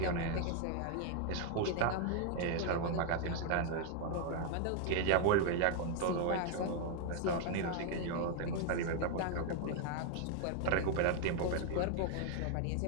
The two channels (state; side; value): different; both; correlation 0.00